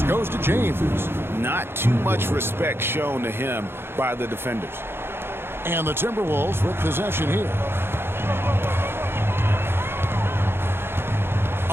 goes to James. Not too much respect shown to him by the defenders. And the Timberwolves with possession here.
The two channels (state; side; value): late; left; 0.11 ms